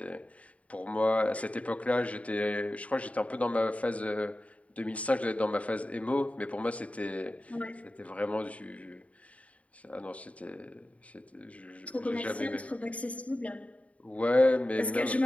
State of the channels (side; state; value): right; late; 0.066 ms